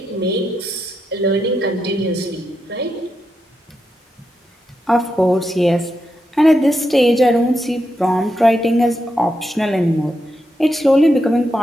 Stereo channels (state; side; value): normal; both; correlation 0.85